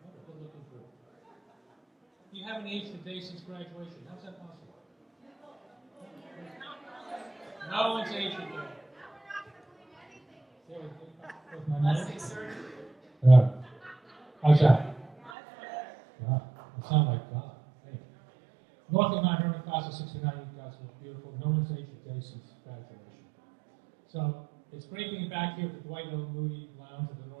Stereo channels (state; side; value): drops out; left; at 15.3 s